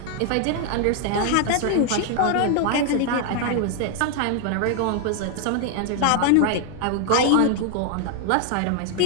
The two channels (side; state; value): both; different; correlation 0.00